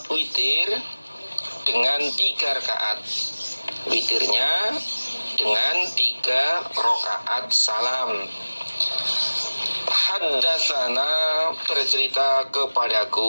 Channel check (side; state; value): both; inverted; correlation -1.00